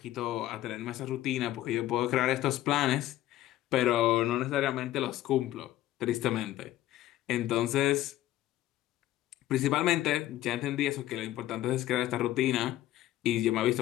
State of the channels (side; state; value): right; quieter; 14.4 dB